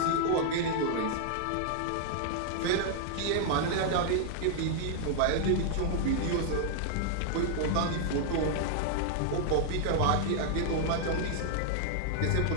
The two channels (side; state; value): both; different; correlation -0.01